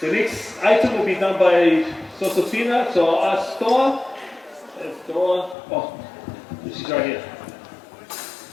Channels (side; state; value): right; drops out; at 5.6 s